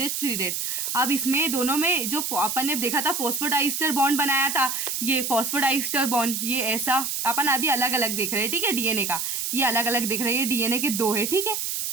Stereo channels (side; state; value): right; noise; hiss, 2 dB below the sound